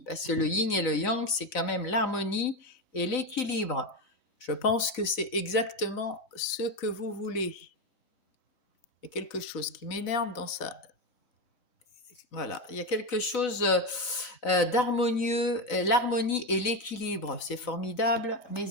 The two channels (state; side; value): late; right; 4.0 ms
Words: parce que le Yin et le Yang, c'est quand même l'harmonie et l'équilibre. Je pense que c'est exactement ce que vous voulez. Il y a quelque chose qui m'énerve dans ça. Voilà, il y a quelque chose d'harmonieux, l'harmonie et l'équilibre. C'est formidable,